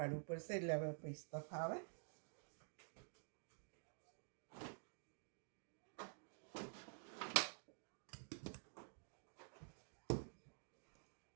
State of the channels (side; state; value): left; silent; digital silence